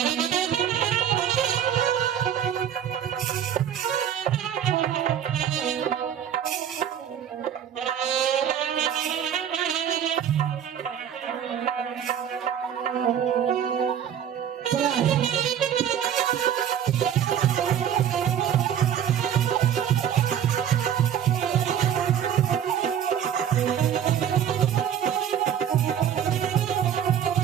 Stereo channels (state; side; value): quieter; left; 9.4 dB